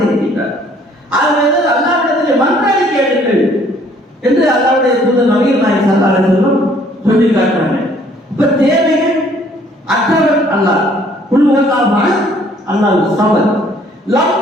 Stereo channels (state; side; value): normal; both; correlation 0.60